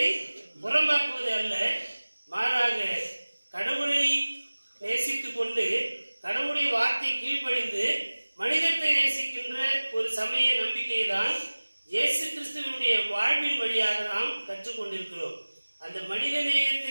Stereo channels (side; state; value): both; inverted; correlation -1.00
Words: புறம்பாக்குவது அல்ல. மாறாக கடவுளை நேசித்துக் கொண்டு கடவுளுடைய வார்த்தை கீழ்ப்படிந்து மனிதத்தை நேசிக்கின்ற ஒரு சமய நம்பிக்கையை தான் இயேசு கிறிஸ்துவினுடைய வாழ்வின் வழியாக நாம் கற்றுக்கொண்டிருக்கிறோம். அந்த மனித